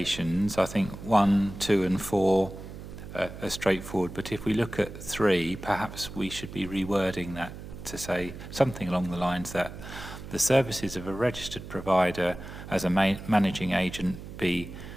I think 1, 2 and 4 are straightforward, but if we look at 3, perhaps we should be rewording that to say something along the lines that the services of a registered provider as a managing agent be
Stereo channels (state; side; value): noise; right; hum, 12 dB below the sound